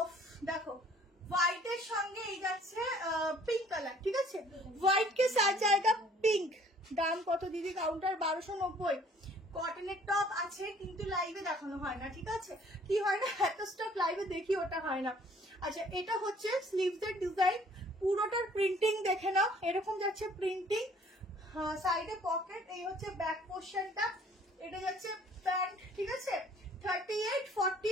অফ দেখো হোয়াইটের সঙ্গে এই যাচ্ছে পিঙ্ক কালার, ঠিক আছে? হোয়াইট কে সাথ জায়গা পিঙ্ক। দাম কত দিদি? কাউন্টার 1290। কটনের টপ আছে কিন্তু লাইভে দেখানো হয় না, ঠিক আছে? কি হয় না, এত স্টক লাইভে দেখি ওটা হয় না। আচ্ছা, এটা হচ্ছে স্লিভস এর ডিজাইন, পুরোটার প্রিন্টিং দেখে নাও, এরকম যাচ্ছে প্রিন্টিং, সাইডে পকেট, এই হচ্ছে ব্যাক পোর্শনটা, এটা যাচ্ছে প্যান্ট, ঠিক আছে? 38,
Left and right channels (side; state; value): both; normal; correlation 0.57